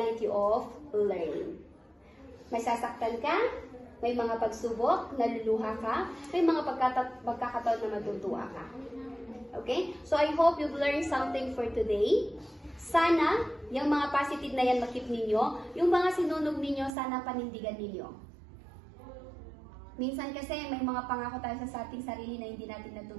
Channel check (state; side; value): drops out; left; at 16.9 s